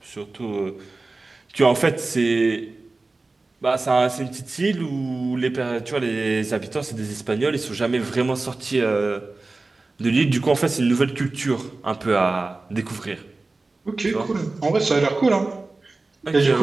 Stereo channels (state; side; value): quieter; left; 3.4 dB